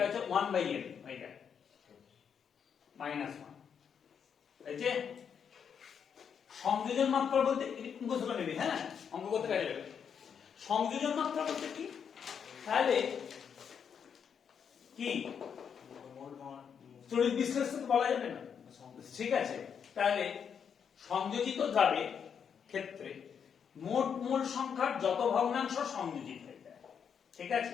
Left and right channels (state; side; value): quieter; right; 7.3 dB